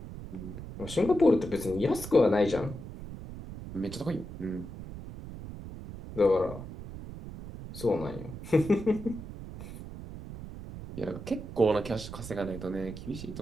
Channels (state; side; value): noise; right; rumble, 11 dB below the sound